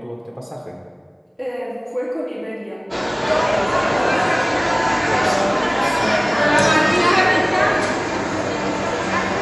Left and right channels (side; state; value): both; identical; correlation 1.00